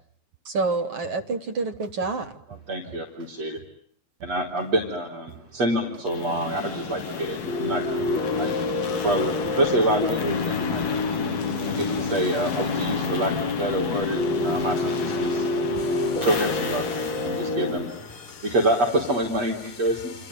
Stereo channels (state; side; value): late; left; 8.3 ms